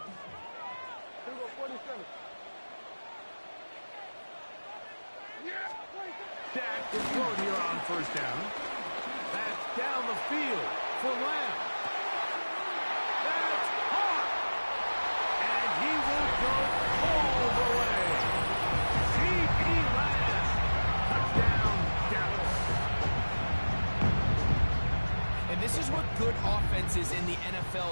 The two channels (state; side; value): inverted; both; correlation -1.00